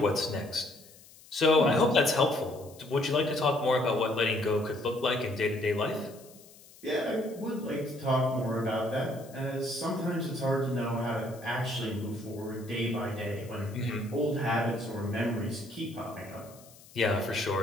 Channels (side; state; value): left; noise; hiss, 23 dB below the sound